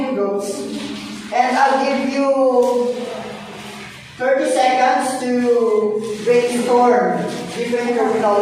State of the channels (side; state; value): both; identical; correlation 1.00